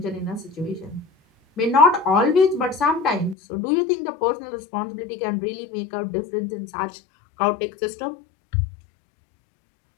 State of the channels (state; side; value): drops out; right; at 3.4 s